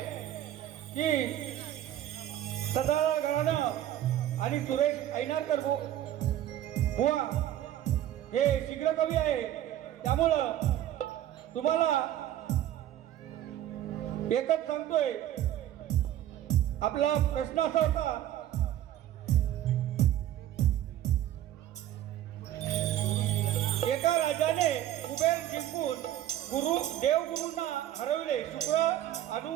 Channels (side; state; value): left; quieter; 12.4 dB